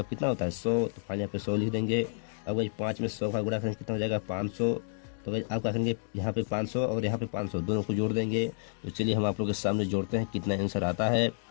कितना होता है, 100। तो फाइनल पे 100 लिख देंगे। अब गाइस 5 में 100 का गुणा करेंगे कितना हो जाएगा, 500। तो भाई आप क्या करेंगे, यहाँ पे 500 और यहाँ पे 500 दोनों को जोड़ देंगे। तो चलिए हम आप लोगों के सामने जोड़ते हैं कितना आंसर आता है।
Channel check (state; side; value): silent; right; digital silence